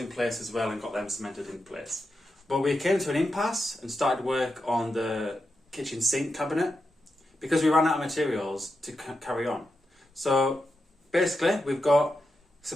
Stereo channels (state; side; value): normal; both; correlation 0.87